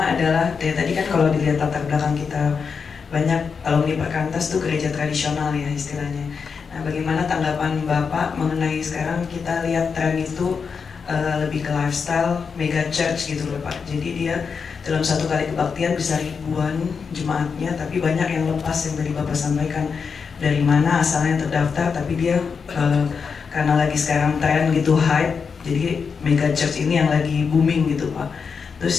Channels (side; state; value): right; quieter; 5.7 dB